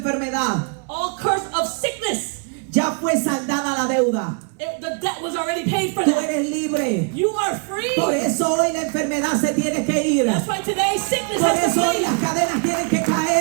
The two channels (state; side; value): quieter; left; 38.4 dB